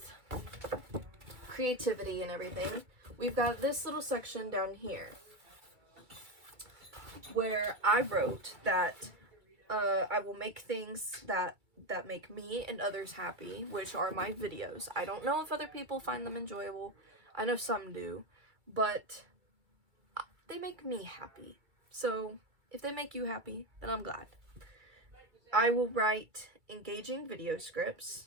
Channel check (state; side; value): late; left; 2.3 ms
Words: creativity and everything, we've got this little section down here where I wrote that I will make things that make me and others happy, which are my videos. I don't know if other people find them enjoyable. I know some do, but they make me happy. So if they make you happy, then I'm glad. I will write engaging video scripts.